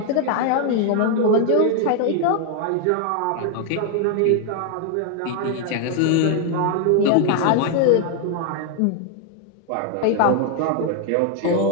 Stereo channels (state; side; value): different; both; correlation 0.00